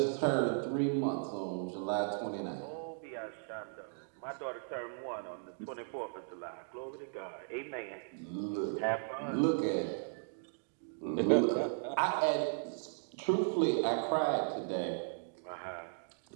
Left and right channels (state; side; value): silent; left; digital silence